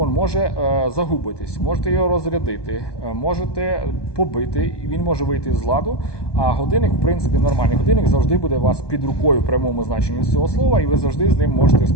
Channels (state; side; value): late; right; 1.2 ms